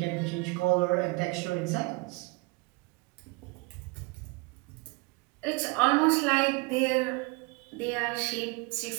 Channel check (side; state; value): left; quieter; 27.4 dB